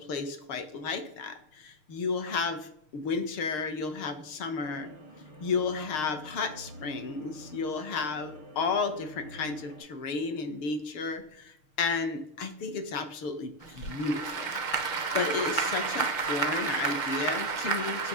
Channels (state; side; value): late; right; 6.6 ms